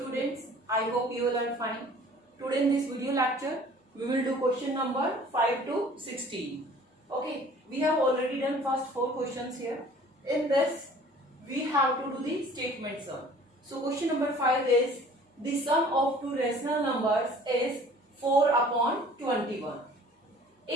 I hope you all are fine. Today in this video lecture, we will do question number 5 to 16. Okay, we have already done first 4 questions here. In this, we have to do the statement sum. So question number 5 is, the sum of two rational numbers is 4 upon 21.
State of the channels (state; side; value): normal; both; correlation 0.50